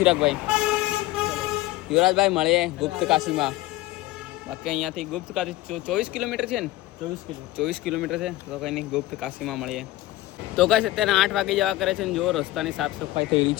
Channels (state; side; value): quieter; right; 17.0 dB